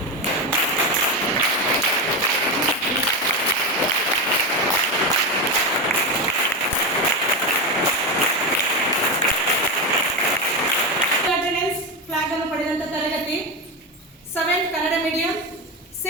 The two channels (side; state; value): both; normal; correlation 0.14